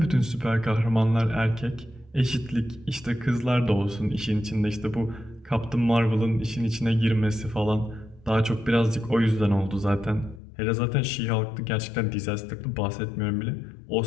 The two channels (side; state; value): right; drops out; at 10.4 s